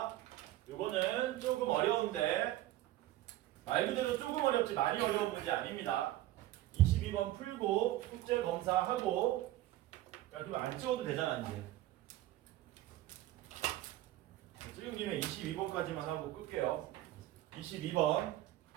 이거는 조금 어려운데 말 그대로 조금 어렵지 많이 어려운 문제 아닙니다. 22번 풀고 숙제 검사하고 야 그럼 안 찍어도 되잖아 이제. 찍은 김에 22번까지만 하고 끌게요. 22번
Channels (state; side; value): quieter; left; 15.2 dB